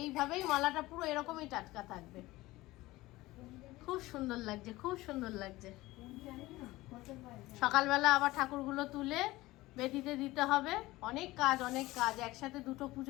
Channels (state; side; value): quieter; right; 18.8 dB